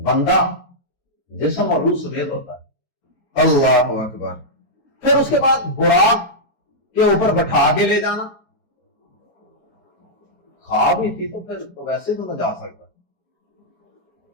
جسم اور روح سمیت ہوتا ہے۔ اللہ اکبر۔ پھر اس کے بعد براق کے اوپر بٹھا کے لے جانا، خواب ہی تھی تو پھر تو ویسے تو نہ جا سکتا،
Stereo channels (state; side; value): late; right; 9.7 ms